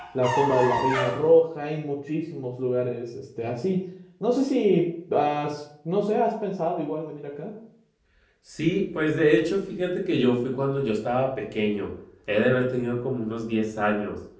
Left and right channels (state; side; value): identical; both; correlation 1.00